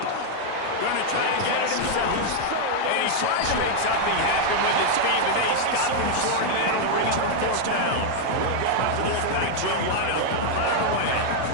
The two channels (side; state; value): both; different; correlation 0.00